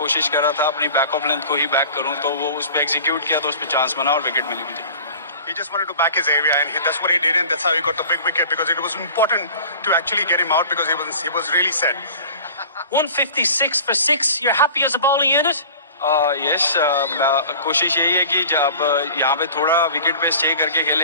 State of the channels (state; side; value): inverted; both; correlation -0.42